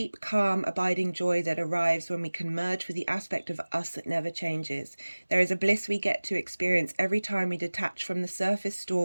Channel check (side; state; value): both; inverted; correlation -1.00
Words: calm, abiding joy that arrives when we can merge with the aspect of us that never changes. There is a bliss we get to experience every time we detach from the surface